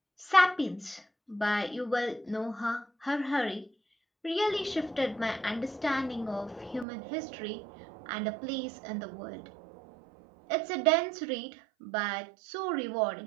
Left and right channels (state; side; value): drops out; left; at 6.9 s